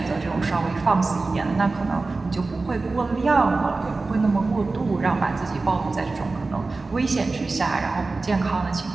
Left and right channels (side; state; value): left; quieter; 3.6 dB